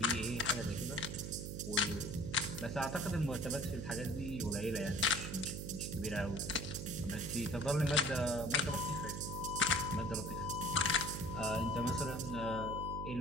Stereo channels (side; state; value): right; noise; hum, 6 dB below the sound